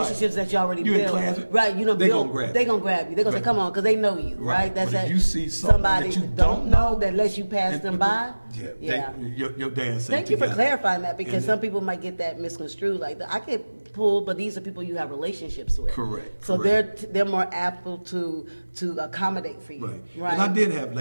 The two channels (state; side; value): inverted; both; correlation -1.00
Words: that you already built. Class, right, they build, gonna grab you. They gonna grab you. They gonna say, come on, because they know you, right? That's but if that, you see somebody that you don't know that lets you pass them by. Your dance. Thank you for clarifying that, because some people might get that misconstrued. Like, I get pulled, but these are people you have relationships with. Correct. So they're more able to accommodate for you. Right. And I did have